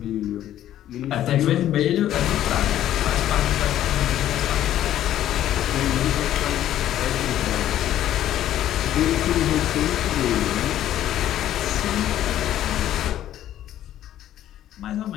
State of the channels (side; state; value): right; quieter; 12.2 dB